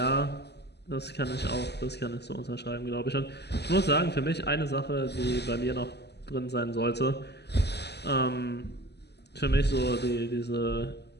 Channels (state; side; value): late; right; 0.49 ms